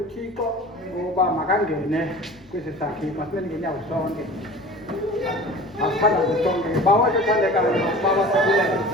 ngoba makangene kwesi sakhe. Masmen ngenyawo sonke. Asithandaze sonke. Bawo ethandekayo baba sibulele.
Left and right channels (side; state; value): both; normal; correlation 0.40